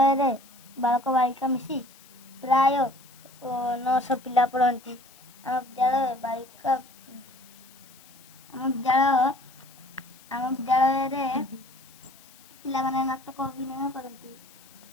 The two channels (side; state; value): left; noise; hiss, 24 dB below the sound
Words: बालक बालिका मिसी प्राय 900 पिला पढ़ती। आम विद्यालय बालिका आम विद्यालय पिला माने नाटक अभिनय करती।